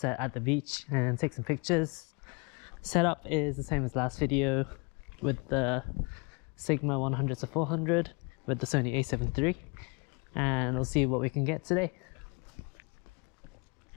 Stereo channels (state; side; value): quieter; right; 31.7 dB